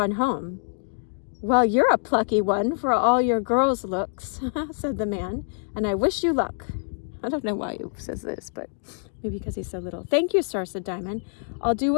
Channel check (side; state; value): right; silent; digital silence